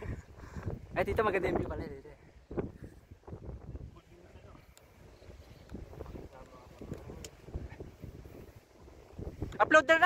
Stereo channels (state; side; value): identical; both; correlation 1.00